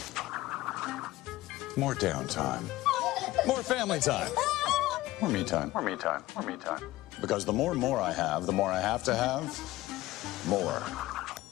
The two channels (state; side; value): quieter; right; 17.3 dB